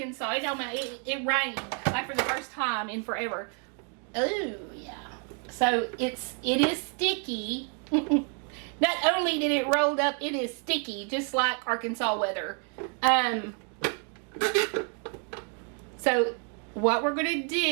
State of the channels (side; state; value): left; quieter; 39.7 dB